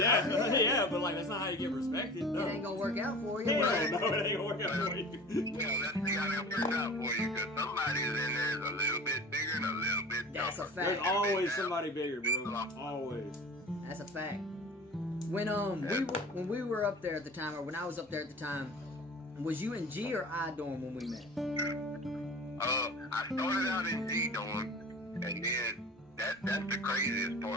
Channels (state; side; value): normal; both; correlation 0.39